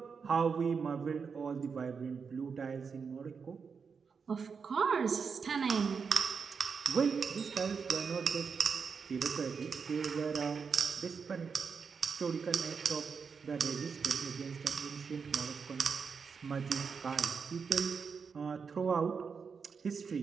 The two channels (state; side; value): quieter; left; 5.7 dB